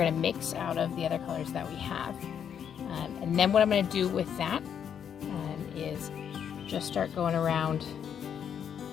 to mix out of the other colors that we have. And then what I'm going to do with that is just start going around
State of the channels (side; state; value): right; quieter; 8.3 dB